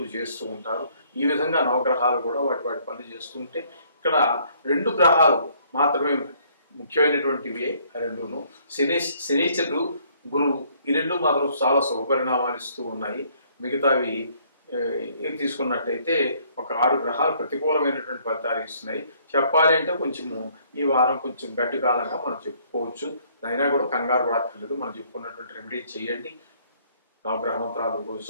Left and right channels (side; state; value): both; inverted; correlation -0.63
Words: చేస్తూ ఉంటారు. ఈ విధంగా నవగ్రహాలు కూడా వాటి వాటి పనులు చేస్తూ ఉంటే ఇక్కడ 2 గ్రహాలు మాత్రమే ముఖ్యమైనటువంటివి. రెండును శనీశ్వరుడు, గురువు, ఈ 2 మాత్రం చాలా శుభపరిణామాలు ఇస్తూ ఉన్నాయి. మిగతావి ఏం తీసుకున్నట్టయితే ఒక 6 గ్రహాలు ప్రతికూలమైనటువంటి ఫలితాలు ఇస్తున్నాయి. చెప్పాలి అంటే కొంచెము ఈ వారం కొంచెం గడ్డి కాలంగా మనం చెప్పుకోవచ్చు. అయినా కూడా కంగారు పడక్కర్లేదు. మనం చెప్పుకున్నటువంటి రెమెడీ చేయండి. నవగ్రహ మంత్రాలు రోజు